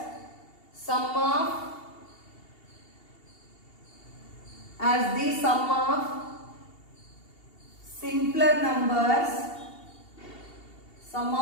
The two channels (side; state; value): right; late; 2.8 ms